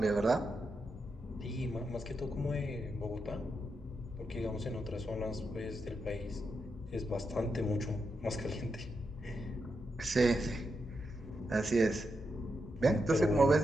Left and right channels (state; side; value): normal; both; correlation 0.85